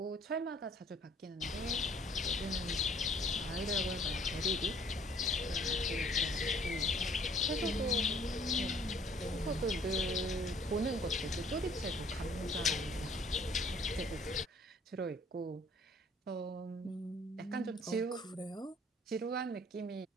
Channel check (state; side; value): normal; both; correlation 0.57